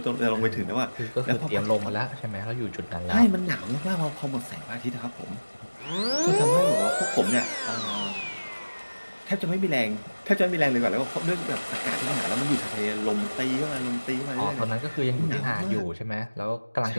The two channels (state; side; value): inverted; both; correlation -1.00